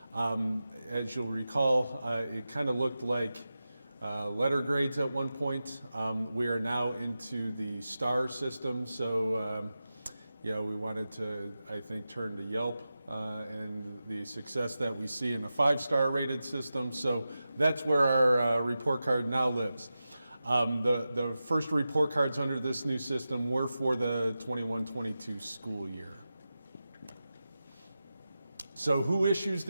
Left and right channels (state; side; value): inverted; both; correlation -0.93